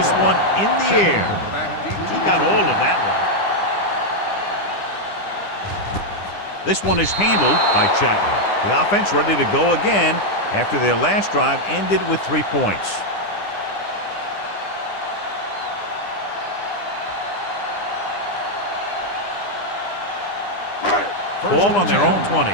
one in the air. He got all of that one. This one is handled by Chapman. The offense ready to go again after their last drive ended with 3 points. Ball on their own 20.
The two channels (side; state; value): right; late; 9.9 ms